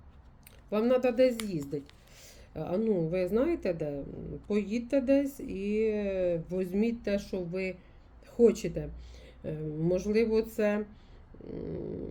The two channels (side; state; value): both; identical; correlation 1.00